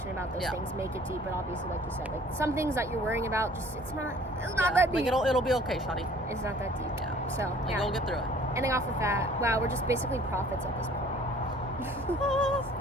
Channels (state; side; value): normal; both; correlation 0.53